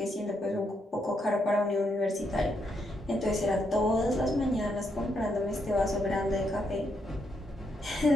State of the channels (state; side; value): normal; both; correlation 0.78